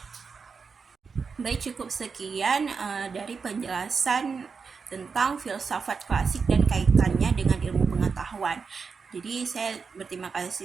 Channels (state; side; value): quieter; left; 5.3 dB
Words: Baik, cukup sekian dari penjelasan tentang filsafat klasik dan kaitannya dengan ilmu pengetahuan. Jadi saya berterima